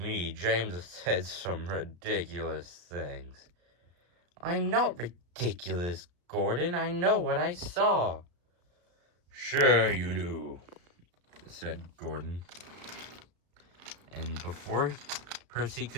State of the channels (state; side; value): late; left; 34 ms